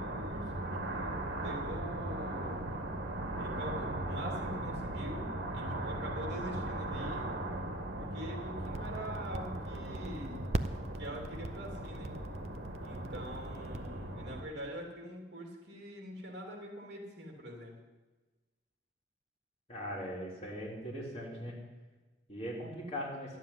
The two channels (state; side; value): normal; both; correlation 0.39